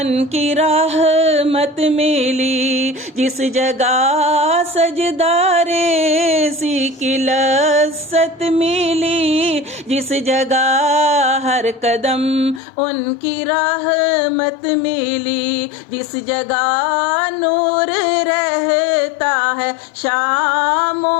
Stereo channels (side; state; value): right; drops out; at 12.6 s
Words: کی رحمت ملی، جس جگہ سجدہ ریزی کی لذت ملی، جس جگہ ہر قدم ان کی رحمت ملی، جس جگہ نور رہتا ہے شام و